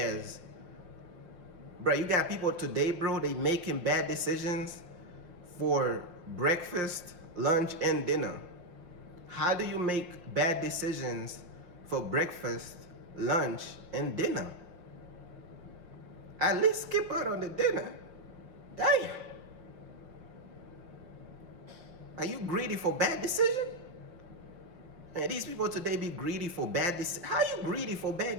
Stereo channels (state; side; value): late; left; 5.7 ms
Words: bro, you got people today, bro, they making bad decisions for breakfast, lunch, and dinner. How do you make bad decisions for breakfast, lunch, and dinner? At least skip out on the dinner. Damn. Are you greedy for bad decision? Man, these people today be greedy for bad decisions. How you greedy for bad